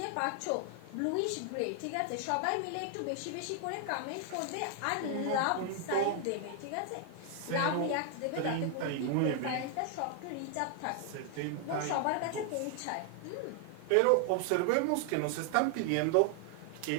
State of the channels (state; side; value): different; both; correlation 0.00